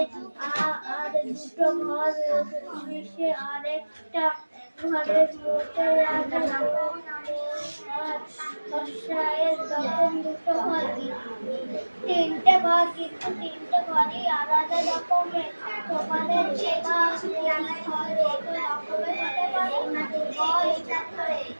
আর দুটো ঘর মিশে আরেকটা ঘরের মধ্যে লাগানো বর্ষায়ের তখন দুটো ঘর, তিনটে ঘর, কিন্তু তিনটে ঘরই আলাদা রকমের। তোমাদের যে ঘর রকমের হতে পারে,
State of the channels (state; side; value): inverted; both; correlation -1.00